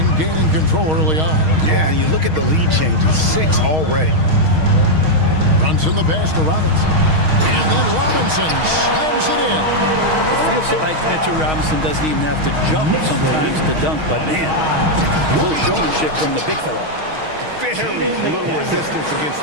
gaining control early on. Yeah, and you look at the lead changes, 6 already. Brunson the pass to Robinson. And then Robinson slams it in. It feels like Mitchell Robinson doesn't even have to jump sometimes to dunk, but man, a little showmanship from the big fella. Very little resistance against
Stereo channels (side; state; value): left; late; 6.4 ms